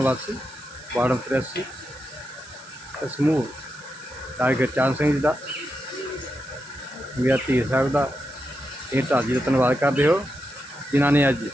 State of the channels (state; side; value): noise; right; hiss, 21 dB below the sound